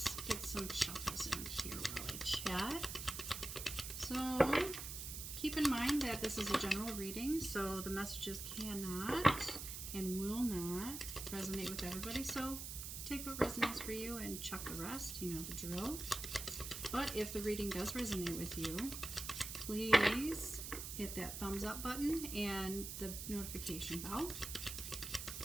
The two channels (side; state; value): right; noise; hiss, 6 dB below the sound